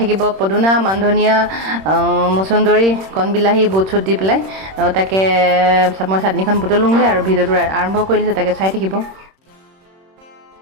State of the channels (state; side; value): late; left; 26 ms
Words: পদুনা, মানধনিয়া, মচুন্দৰী, কণবিলাহী, বুট চুট দি পেলাই তাকে মই চাটনিখন বুটলোঁগৈ আৰু ভিডিঅ'টো আৰম্ভ কৰি দিছোঁ, তাকে চাই থাকিব।